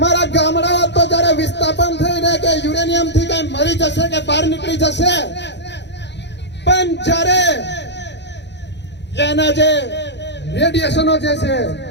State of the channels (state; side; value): late; right; 0.51 ms